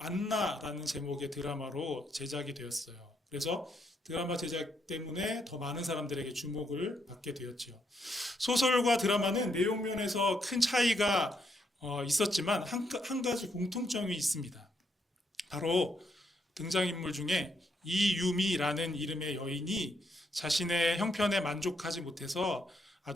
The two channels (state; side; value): normal; both; correlation 0.76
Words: 제목의 드라마로 제작이 되었어요. 그래서 드라마 제작 때문에 더 많은 사람들에게 주목을 받게 되었죠. 소설과 드라마는 내용 면에서 큰 차이가 있었지만 한 가지 공통점이 있습니다. 바로 등장인물 중에 이유미라는 이름의 여인이 자신의 형편에 만족하지 못해서